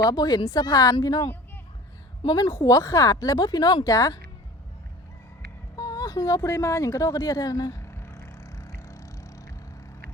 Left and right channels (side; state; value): both; normal; correlation 0.42